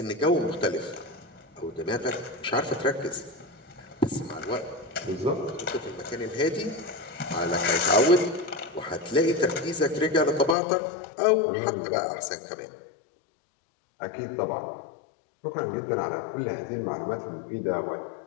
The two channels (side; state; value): right; drops out; at 10.6 s